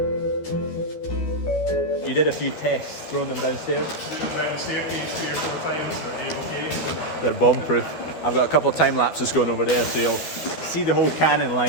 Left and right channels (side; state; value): right; late; 12 ms